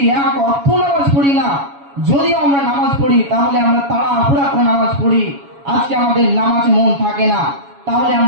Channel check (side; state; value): left; late; 7.1 ms